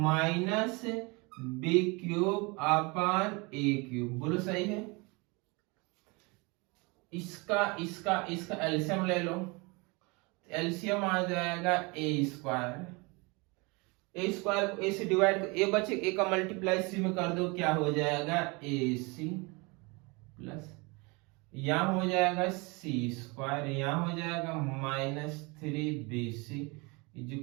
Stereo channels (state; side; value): quieter; left; 27.7 dB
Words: minus B cube upon A cube. बोलो सही है। इसका इसका इसका एलसीएम ले लो, एलसीएम आ जाएगा ए स्क्वायर। ए स्क्वायर को ए से डिवाइड, ए बचे ए का मल्टीप्लाई सी में कर दो, क्या हो जाएगा ए सी प्लस यहां हो जाएगा सी स्क्वायर, यहां हो जाएगा minus 3bc is